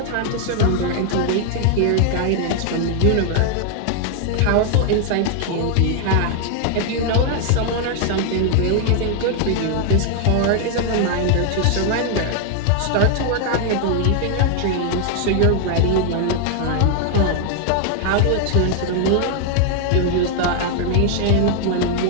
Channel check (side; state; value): both; different; correlation 0.00